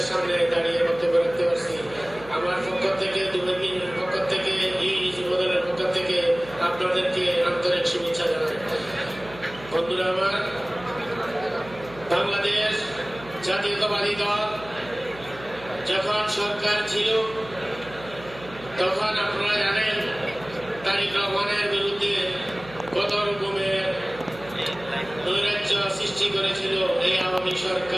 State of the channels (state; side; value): noise; right; hum, 18 dB below the sound